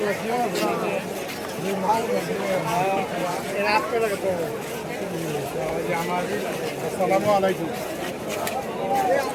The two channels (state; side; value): identical; both; correlation 1.00